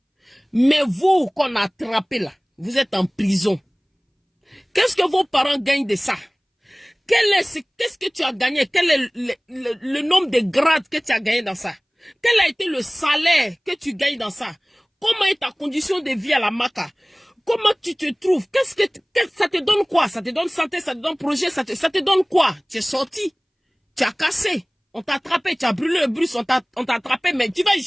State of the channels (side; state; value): both; identical; correlation 1.00